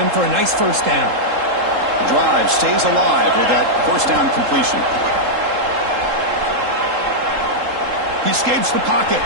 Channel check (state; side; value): late; left; 3.7 ms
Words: for a nice 1st down. The drive stays alive with that 1st down completion. He escapes the pocket.